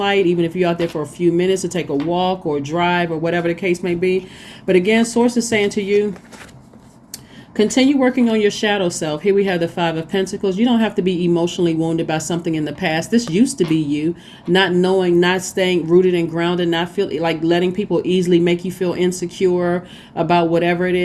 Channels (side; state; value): both; identical; correlation 1.00